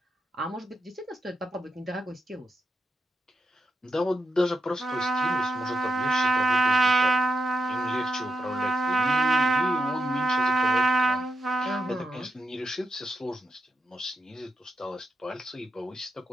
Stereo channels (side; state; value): both; normal; correlation 0.83